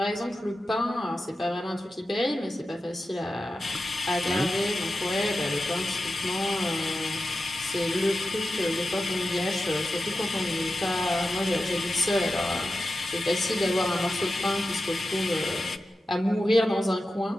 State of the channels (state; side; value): normal; both; correlation 0.92